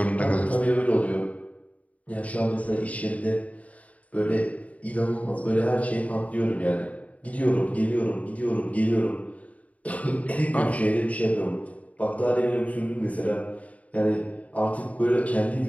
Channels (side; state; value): right; late; 0.069 ms